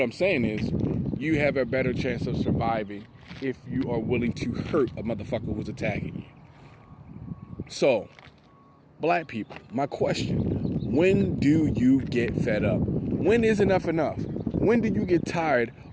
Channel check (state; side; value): identical; both; correlation 1.00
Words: I'm saying is you have a better chance of surviving if you are willing to hurt a motherfucker who's attacking you. So, black people, my question, when do you get fed up? When is enough enough? When do you get tired